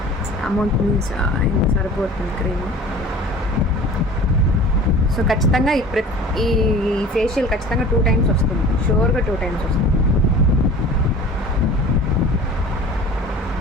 అమౌంట్ మీన్స్ ఇంకా సరిపోతుంది క్రీమ్. సో ఖచ్చితంగా ఈ ఫేషియల్ ఖచ్చితంగా 2 times వస్తుంది, షూర్గా 2 times వస్తుంది.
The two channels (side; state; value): both; normal; correlation 0.43